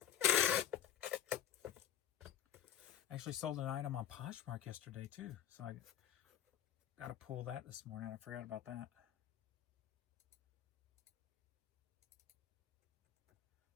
Actually sold an item on Poshmark yesterday too. So Gotta pull that this morning. I forgot about that.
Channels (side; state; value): right; quieter; 10.5 dB